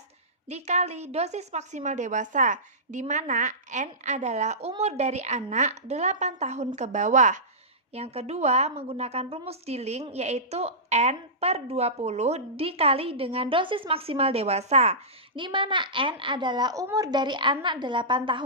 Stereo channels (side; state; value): both; normal; correlation -0.17